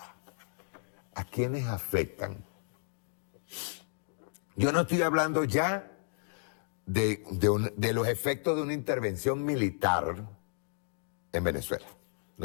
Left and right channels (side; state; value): right; silent; digital silence